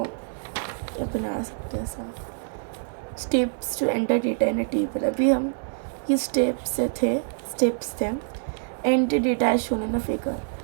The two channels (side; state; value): left; silent; digital silence